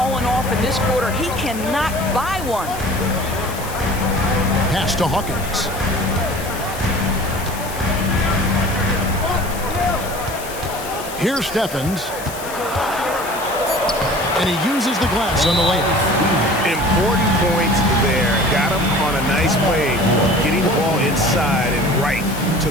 off in this quarter. He cannot buy one. Pass to Hawkins. Here's Stephens. And he uses the glass on the layup. Important points there. Got him on a nice play, getting the ball inside and right to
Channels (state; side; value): noise; left; hiss, 13 dB below the sound